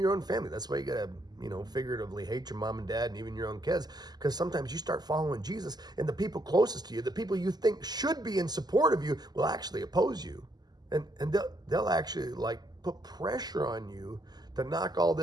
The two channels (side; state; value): left; late; 0.20 ms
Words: own family. That's why you gotta, figuratively hate your mom and dad and even your own kids. Because sometimes you start following Jesus and the people closest to you, the people you think should be in support of you, will actually oppose you. And they'll actually put pressure on you to knock all